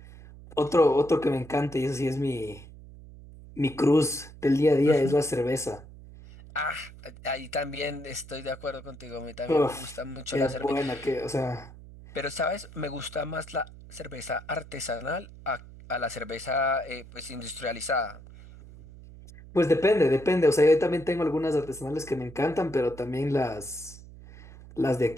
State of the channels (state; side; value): noise; right; hum, 18 dB below the sound